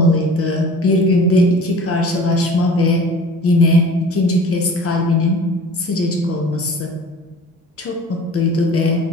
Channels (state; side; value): normal; both; correlation 0.43